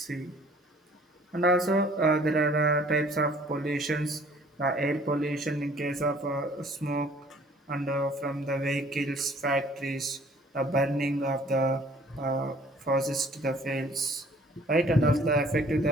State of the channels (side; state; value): both; normal; correlation 0.55